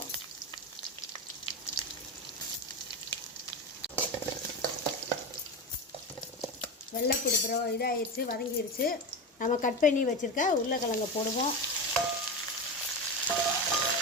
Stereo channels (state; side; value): normal; both; correlation 0.20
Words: வெள்ளைப்பூடு அப்புறம் இதாகிடுச்சு, வதங்கிடுச்சு. நம்ம கட் பண்ணி வச்சுருக்க உருளைக்கிழங்கை போடுவோம்.